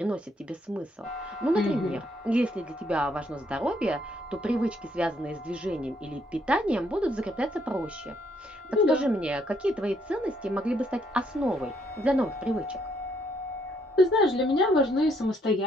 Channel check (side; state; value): both; normal; correlation 0.71